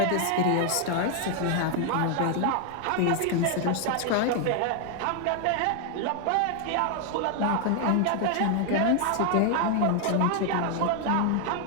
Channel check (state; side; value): different; both; correlation 0.00